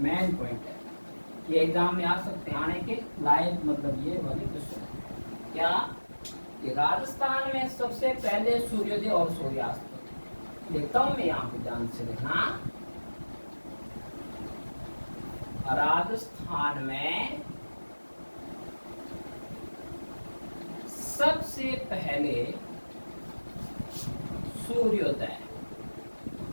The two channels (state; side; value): inverted; both; correlation -1.00